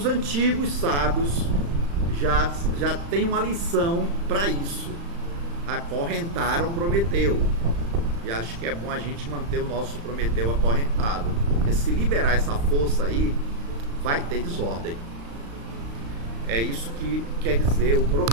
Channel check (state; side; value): late; left; 35 ms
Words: antigos sábios já têm uma lição para isso, acorrentaram Prometeu, e acho que é bom a gente manter o nosso Prometeu acorrentado, porque se liberar essa força aí, vai ter desordem. É isso que quer dizer o